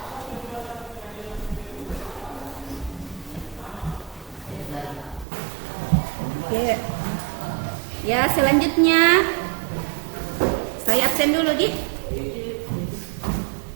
Oke. Ya, selanjutnya saya absen dulu, Di.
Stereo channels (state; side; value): drops out; left; at 5.2 s